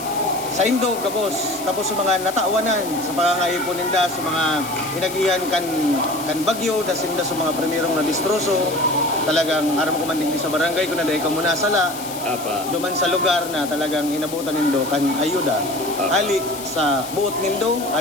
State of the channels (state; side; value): noise; left; hiss, 12 dB below the sound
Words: sa Indo, kapos. Tapos sa mga nataawanan, sa pangangayipon ninda, sa mga hinagihan kan bagyo, dasinda sa mga primerong na distroso. Talagang aram ko man din sa barangay, kung naday ka muna sala, Apa. duman sa lugar na talagang inabutan nindo kan ayuda. Ali sa buot nindo,